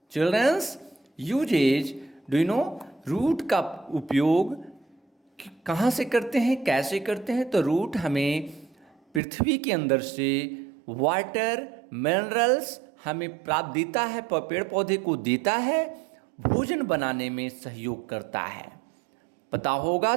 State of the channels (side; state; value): left; drops out; at 9.2 s